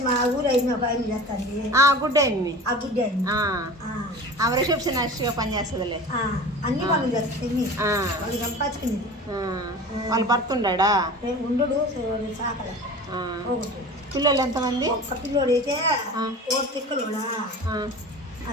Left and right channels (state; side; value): normal; both; correlation 0.37